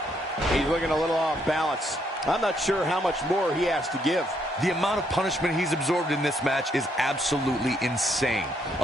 He's looking a little off balance. I'm not sure how much more he has to give. The amount of punishment he's absorbed in this match is absolutely insane.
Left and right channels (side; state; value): both; normal; correlation 0.73